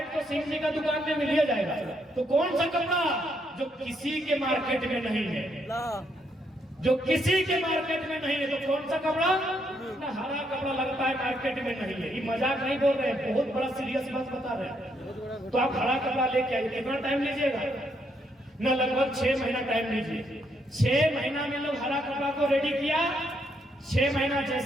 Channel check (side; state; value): both; normal; correlation 0.75